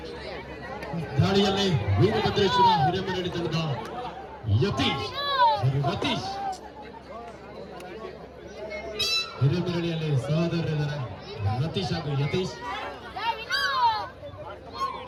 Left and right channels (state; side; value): identical; both; correlation 1.00